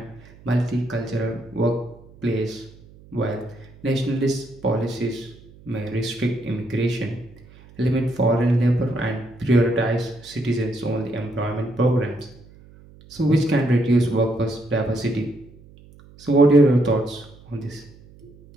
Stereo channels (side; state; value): right; noise; hum, 23 dB below the sound